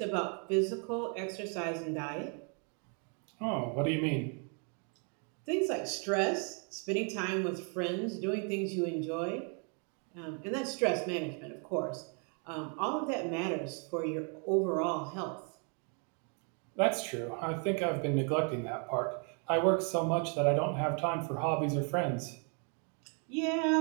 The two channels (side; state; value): left; quieter; 39.3 dB